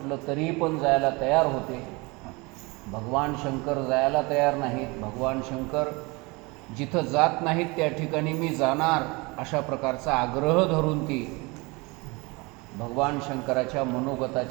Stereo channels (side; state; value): left; quieter; 26.1 dB